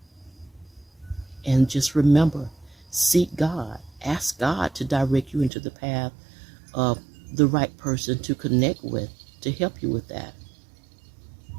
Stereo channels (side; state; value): left; drops out; at 5.5 s